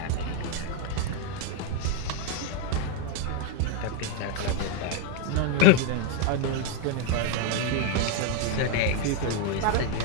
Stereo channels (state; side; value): different; both; correlation 0.01